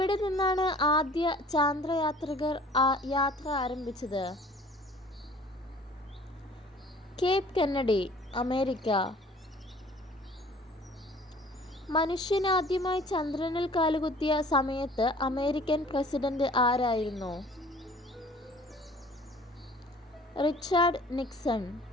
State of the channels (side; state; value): both; normal; correlation 0.50